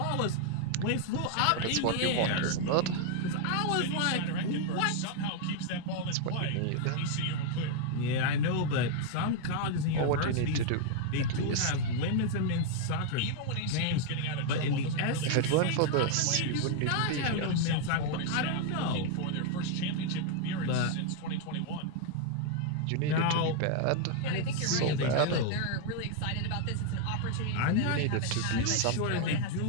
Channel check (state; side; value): different; both; correlation 0.00